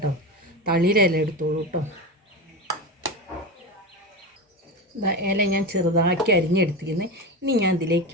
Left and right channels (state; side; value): normal; both; correlation 0.21